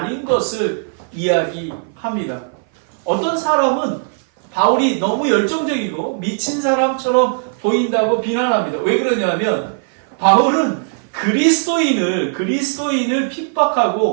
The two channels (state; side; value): silent; left; 57 dB below the other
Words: 것을 이야기합니다. 어떤 사람은 바울이 너무 열정적이고 미친 사람처럼 보인다고 비난합니다. 왜 그러냐면 바울은 그리스도인을